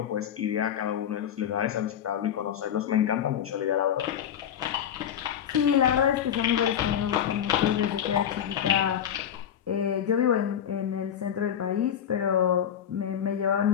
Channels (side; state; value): right; quieter; 9.3 dB